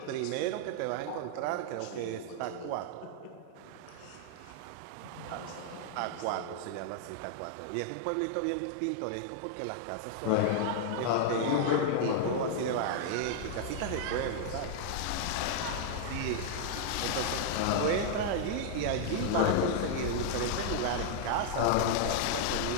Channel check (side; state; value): both; different; correlation -0.01